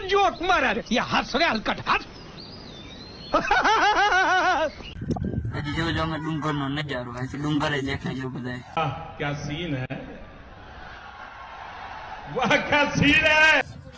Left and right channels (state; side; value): identical; both; correlation 1.00